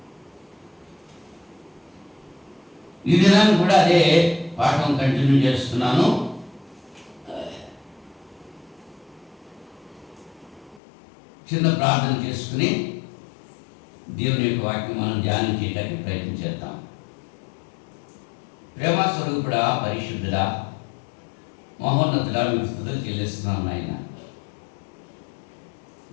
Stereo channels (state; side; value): drops out; right; at 10.8 s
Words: ఈ దినాన్ని కూడా అదే పాఠం కంటిన్యూ చేస్తున్నాను. చిన్న ప్రార్థన చేసుకుని దేవుని యొక్క వాక్యం మనం ధ్యానం చేయడానికి ప్రయత్నం చేద్దాం. ప్రేమ స్వరూపుడా, పరిశుద్ధుడా, మహోన్నతుడా, మీకు స్తుతులు చెల్లిస్తున్నాను నాయన.